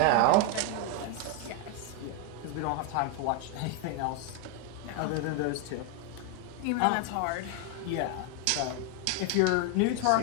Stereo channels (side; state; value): both; different; correlation 0.01